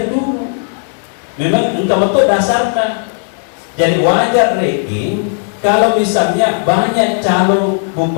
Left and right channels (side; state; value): right; silent; digital silence